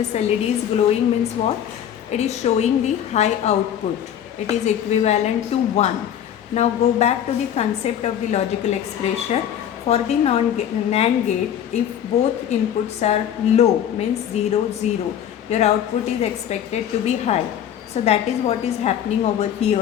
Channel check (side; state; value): right; quieter; 9.9 dB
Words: LED is glowing means what? It is showing the high output. It is equivalent to 1. Now go back to the concept of the logical expression. For the NAND gate, if both inputs are low means 0, 0, your output is expected to be high. So that is what is happening over